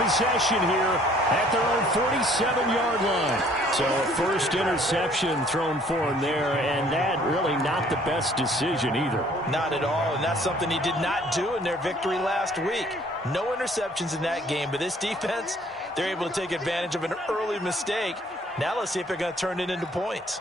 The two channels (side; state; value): both; normal; correlation 0.58